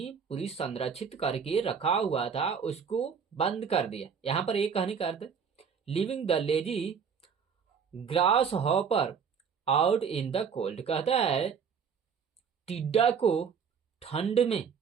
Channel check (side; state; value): left; quieter; 6.6 dB